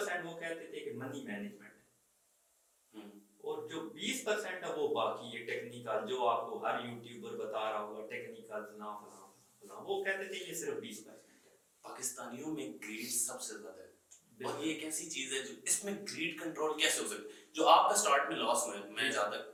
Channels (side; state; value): both; identical; correlation 1.00